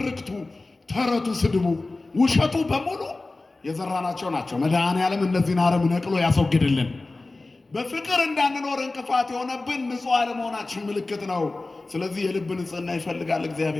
ተረቱ፣ ስድቡ፣ ውሸቱ በሙሉ የዘራናቸው ናቸው። መድኃኔዓለም እነዚህን አረም ነቅሎ ያስወግድልን። በፍቅር እንዳንኖር እንቅፋት የሆነብን ንጹህ አለመሆናችን ምልክት ነው። ስለዚህ የልብ ንጽህና ይፈልጋል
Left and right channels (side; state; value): right; quieter; 3.2 dB